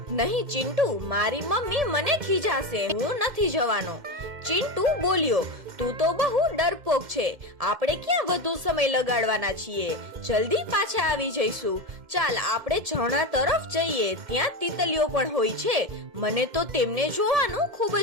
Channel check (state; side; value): late; left; 1.7 ms